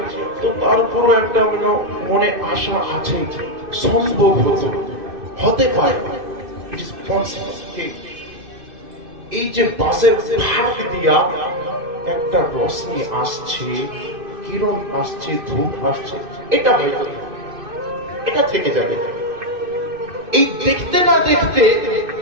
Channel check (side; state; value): left; late; 2.6 ms